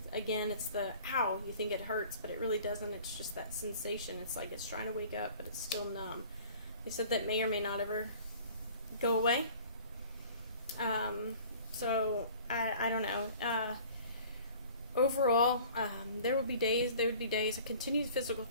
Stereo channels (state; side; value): inverted; both; correlation -0.48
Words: Again, it's the ow, you think it hurts, but it really doesn't. It's just that sensation. It's like it's trying to wake up, but it's still numb. They said that may or may not ever go away. So I don't know. Overall, there would be days I continued physical